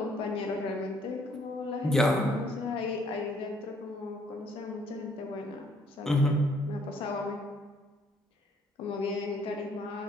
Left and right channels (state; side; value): normal; both; correlation 0.65